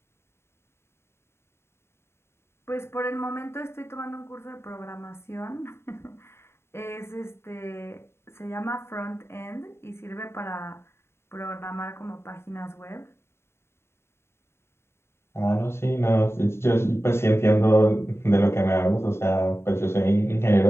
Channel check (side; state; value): right; late; 0.12 ms